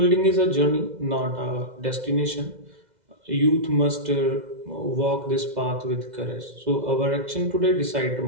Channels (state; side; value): late; left; 2.0 ms